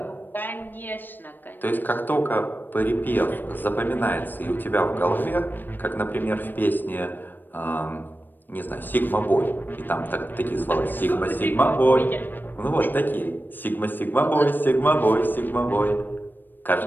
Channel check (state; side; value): late; right; 0.092 ms